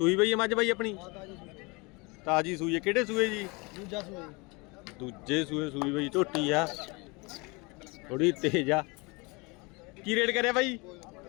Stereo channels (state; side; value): quieter; right; 27.5 dB